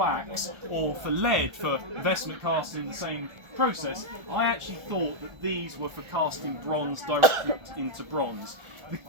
or for lead for investment casting in the same process. I actually thought that these were for casting bronze directly into bronze. The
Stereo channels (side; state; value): left; late; 1.4 ms